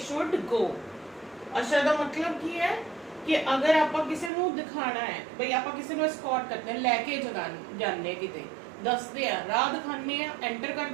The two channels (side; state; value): left; drops out; at 4.3 s